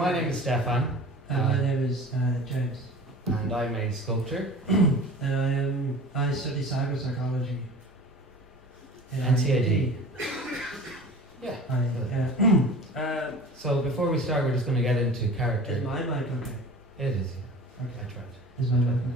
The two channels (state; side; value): normal; both; correlation 0.40